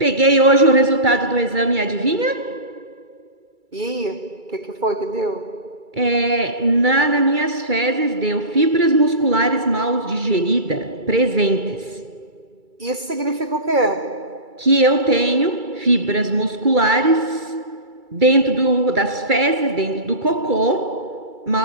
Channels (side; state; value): left; late; 2.3 ms